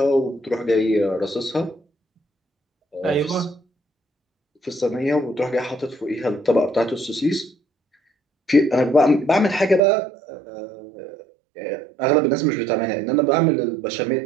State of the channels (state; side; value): drops out; left; at 9.8 s